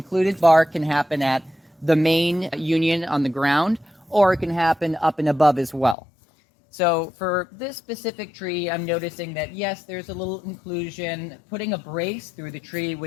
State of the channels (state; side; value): drops out; right; at 6.0 s